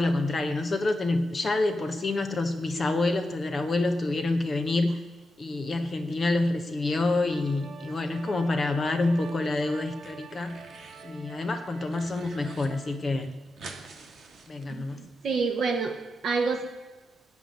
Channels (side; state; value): both; normal; correlation 0.89